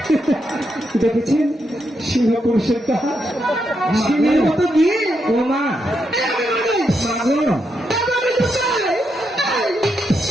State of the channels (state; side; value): normal; both; correlation 0.82